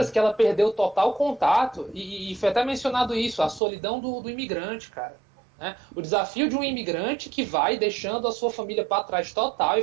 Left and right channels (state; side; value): drops out; left; at 3.6 s